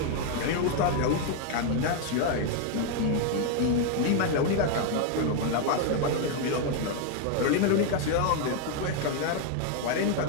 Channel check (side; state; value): both; different; correlation 0.00